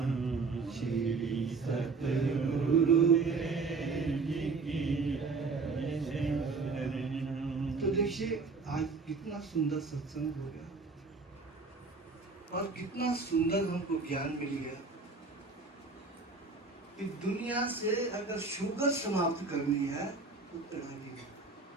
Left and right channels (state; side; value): quieter; left; 4.2 dB